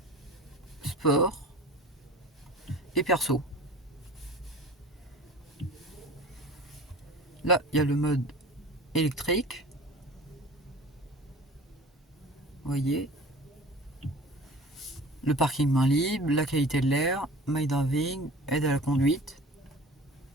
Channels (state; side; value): normal; both; correlation 0.40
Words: sport et perso. Là, il y a le mode électrique. Vous voyez. Le parking main libre, la qualité de l'air, My Driving, aide à la conduite.